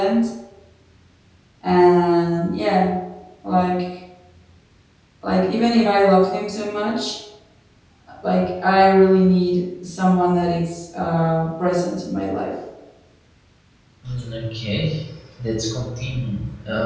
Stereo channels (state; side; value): identical; both; correlation 1.00